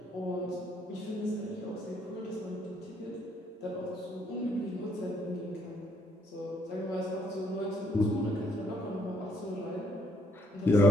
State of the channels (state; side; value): normal; both; correlation 0.69